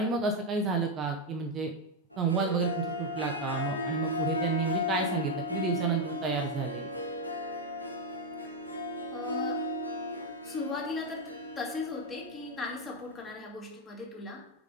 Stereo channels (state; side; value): normal; both; correlation 0.03